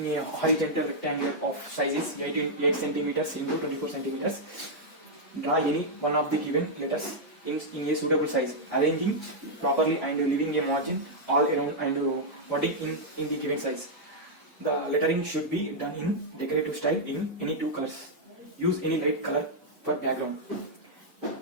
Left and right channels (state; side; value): normal; both; correlation -0.05